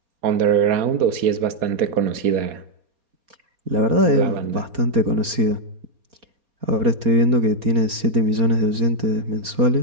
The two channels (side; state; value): left; late; 4.2 ms